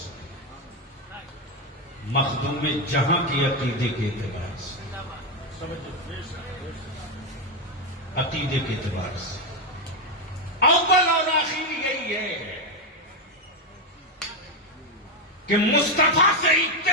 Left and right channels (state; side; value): normal; both; correlation 0.07